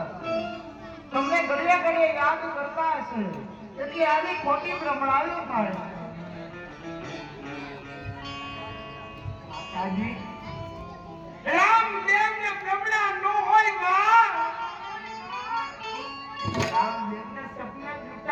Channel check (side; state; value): both; identical; correlation 1.00